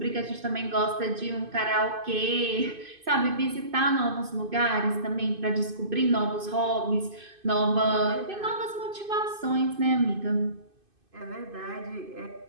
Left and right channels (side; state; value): left; late; 2.5 ms